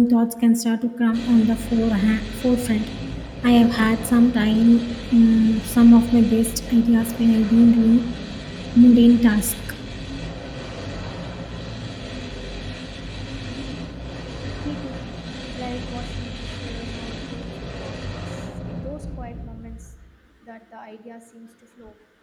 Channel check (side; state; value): both; identical; correlation 1.00